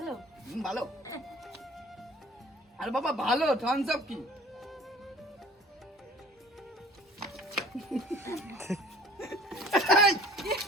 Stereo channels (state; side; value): normal; both; correlation 0.50